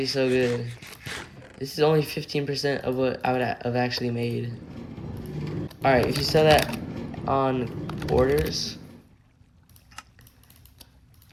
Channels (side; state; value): both; identical; correlation 1.00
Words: so good. This is only 15% of what I would have actually made. Alright, if you sell that on orders,